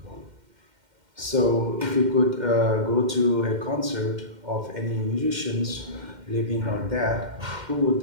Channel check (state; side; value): late; left; 2.1 ms